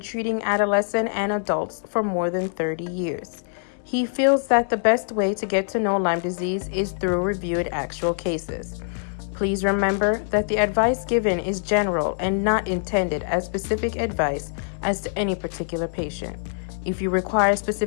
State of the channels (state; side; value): silent; right; digital silence